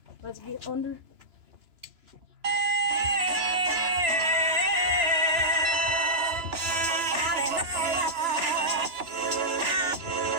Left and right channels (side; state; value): left; late; 3.0 ms